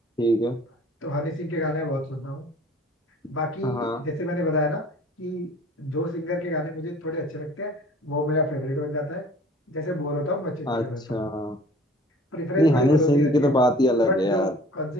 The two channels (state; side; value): normal; both; correlation 0.48